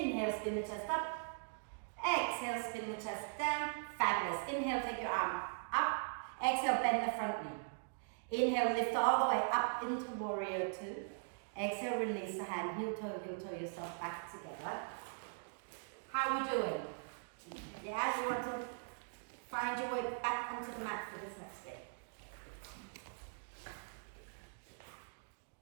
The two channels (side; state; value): left; silent; digital silence